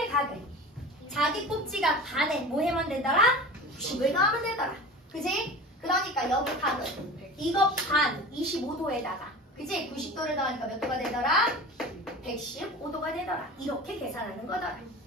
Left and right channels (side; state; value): both; normal; correlation 0.35